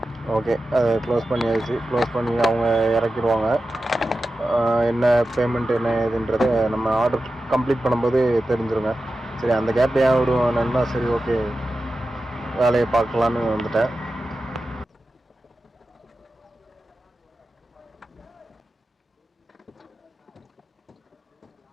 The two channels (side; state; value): both; normal; correlation 0.93